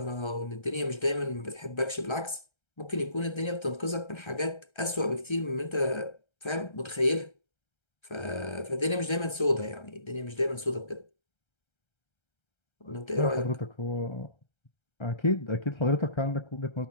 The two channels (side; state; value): right; late; 1.3 ms